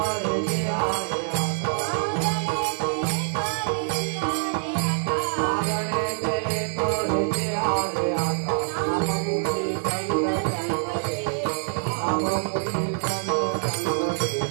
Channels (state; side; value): silent; left; 58 dB below the other